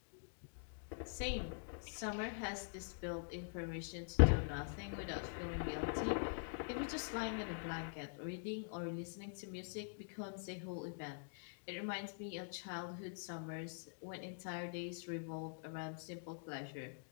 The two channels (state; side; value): silent; right; digital silence